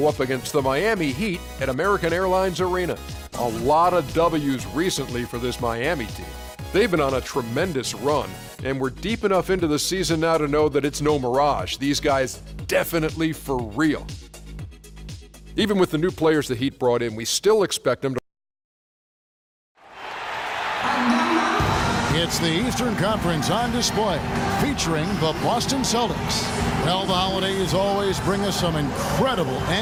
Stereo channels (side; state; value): both; identical; correlation 1.00